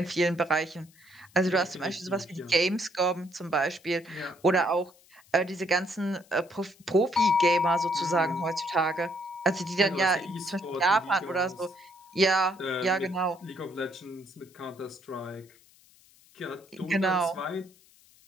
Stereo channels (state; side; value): noise; left; hiss, 28 dB below the sound